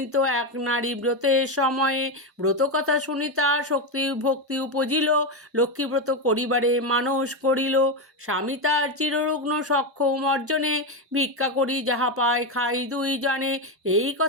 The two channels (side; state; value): both; normal; correlation 0.11